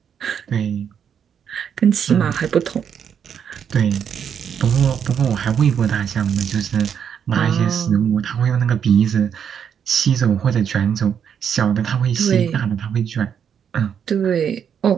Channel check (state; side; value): quieter; left; 8.0 dB